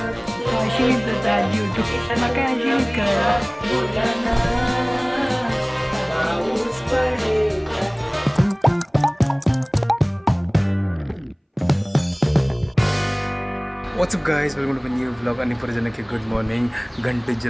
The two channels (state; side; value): identical; both; correlation 1.00